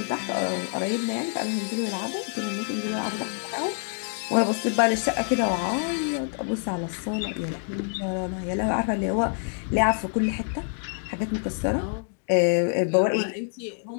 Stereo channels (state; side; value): silent; right; 56 dB below the other